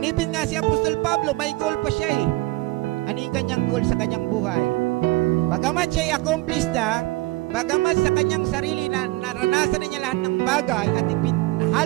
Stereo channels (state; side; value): quieter; left; 21.2 dB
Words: nga si Apostol Pablo, may goal pa siya Ano yung kanyang goal sa kanyang buhay? Bagamat siya accomplished na, bagamat sa kanyang sarili na naranasan na niya lahat ng bagay at